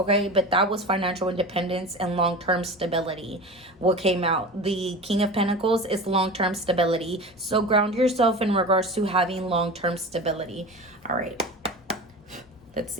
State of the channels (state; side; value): normal; both; correlation 0.32